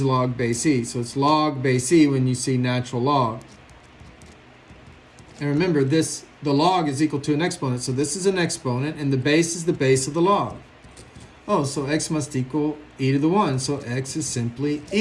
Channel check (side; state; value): both; identical; correlation 1.00